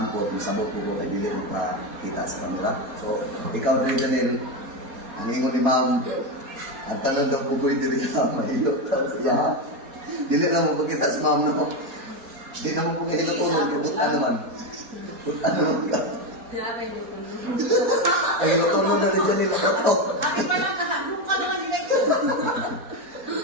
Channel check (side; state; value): left; late; 4.2 ms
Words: po misabot ko kay dili mo pa kita sa camera. So ikaw rin Janelle, ang ingon ni Ma'am, ang tanan daw pugoy diri sa mahilo. Ya. Dili lang mo kita si Ma'am no. Di na mo po kahilo tulog buta naman. Buta naman ka. Ay tulog na rin Janelle ko.